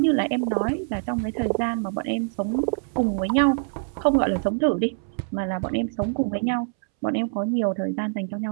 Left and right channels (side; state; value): left; silent; 62 dB below the other